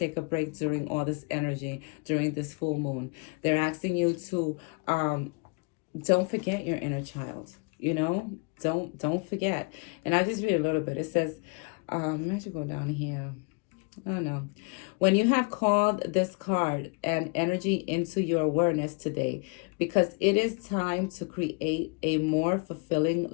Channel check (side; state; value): right; quieter; 32.5 dB